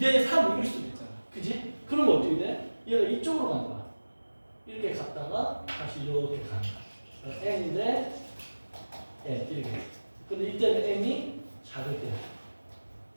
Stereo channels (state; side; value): inverted; both; correlation -1.00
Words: 3 이럴 수도 있잖아. 그지? 그러면 어떻게 돼? 얘가 이쪽으로 가는 거야. 이렇게 갔다가 다시 이렇게 가는 거야. N 대 N 이렇게. 근데 이때는 M이 작을 때.